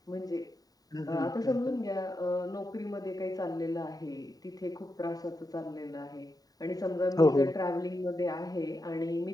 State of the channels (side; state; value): right; late; 0.18 ms